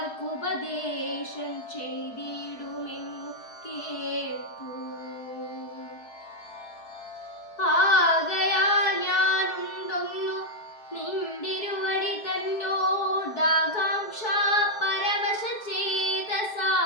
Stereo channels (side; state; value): right; late; 4.6 ms